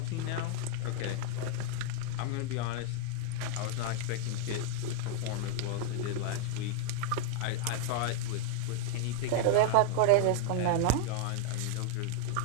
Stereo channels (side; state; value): both; different; correlation 0.00